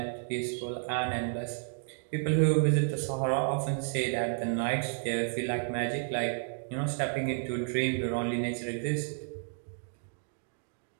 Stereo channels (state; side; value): silent; left; digital silence